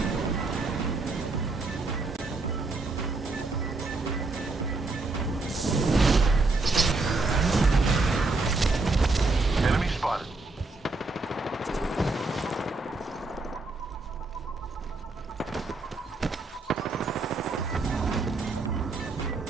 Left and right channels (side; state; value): left; quieter; 3.5 dB